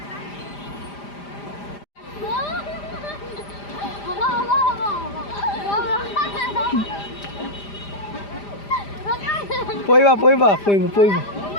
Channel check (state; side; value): late; right; 5.0 ms